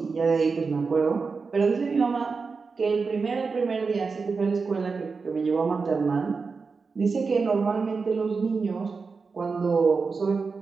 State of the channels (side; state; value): left; quieter; 4.7 dB